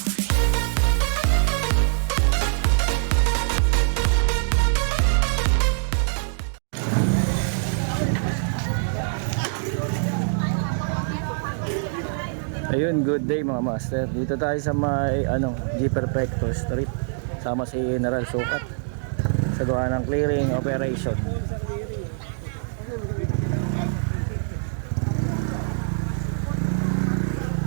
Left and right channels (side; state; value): left; silent; digital silence